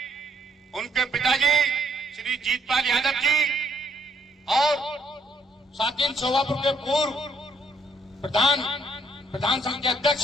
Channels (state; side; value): normal; both; correlation 0.69